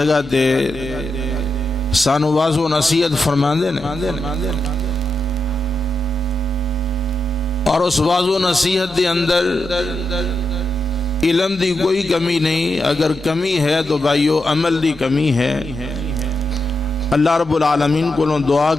تے سانو واضح و نصیحت فرماندے نے، اور اس واضح و نصیحت دے اندر علم دی کوئی کمی نہیں۔ اگر کمی ہے تو بھائیو عمل دی کمی ہے۔ اللہ رب العالمین کو دعا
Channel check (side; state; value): both; normal; correlation 0.86